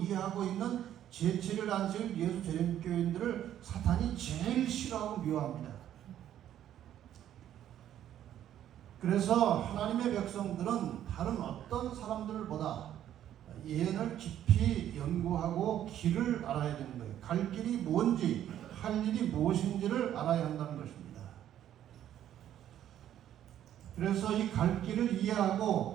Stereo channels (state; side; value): quieter; left; 11.2 dB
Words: 있는 제7일 안식일 예수 재림교인들을 사탄이 제일 싫어하고 미워합니다. 그래서 하나님의 백성들은 다른 어떤 사람들보다 예언을 깊이 연구하고 길을 알아야 되는 거예요. 갈 길이 뭔지, 할 일이 무엇인지를 알아야 한다는 것입니다. 그래서 이 갈 길을